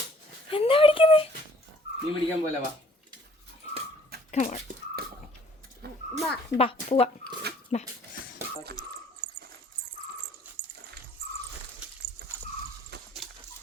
എന്താ പിടിക്കുന്നേ? മീൻ പിടിക്കാൻ പോലെ വാ. ബാ പോവാ. ബാ.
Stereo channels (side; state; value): both; normal; correlation 0.58